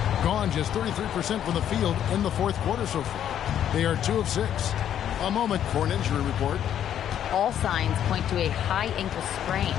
Gone just 33% from the field in the fourth quarter so far. They are 2 of 6. A moment for an injury report. All signs point to a high ankle sprain,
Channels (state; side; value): quieter; right; 10.1 dB